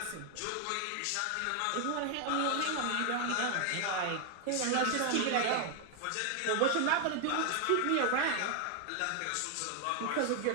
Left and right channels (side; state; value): both; different; correlation 0.00